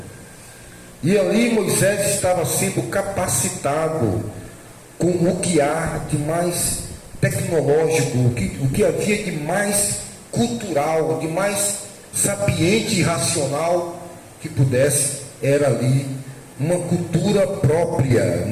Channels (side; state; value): both; identical; correlation 1.00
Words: E ali Moisés estava sendo capacitado com o que há de mais tecnológico, o que havia de mais cultural, de mais sapiente e racional que pudesse. Era ali uma cultura própria,